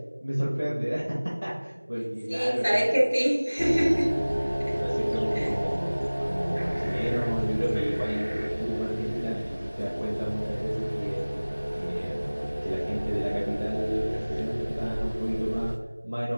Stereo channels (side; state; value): both; inverted; correlation -1.00